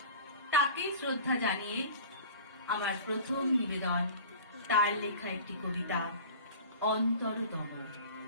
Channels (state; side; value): inverted; both; correlation -0.40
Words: তাকে শ্রদ্ধা জানিয়ে আমার প্রথম নিবেদন তার লেখা একটি কবিতা, অন্তরতম।